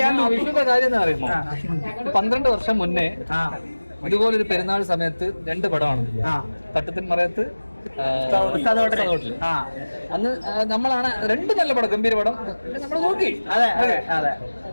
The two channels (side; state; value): both; inverted; correlation -1.00